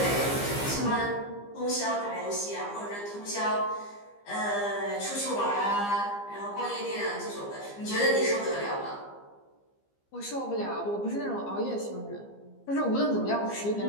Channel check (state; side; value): late; right; 15 ms